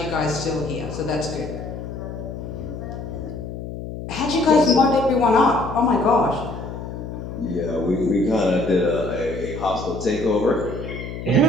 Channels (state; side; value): noise; left; hum, 8 dB below the sound